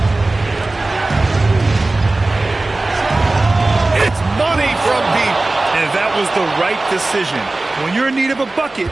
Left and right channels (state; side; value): quieter; left; 3.0 dB